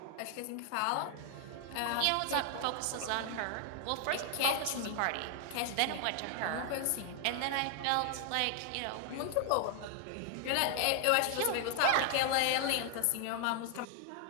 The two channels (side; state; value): both; different; correlation 0.00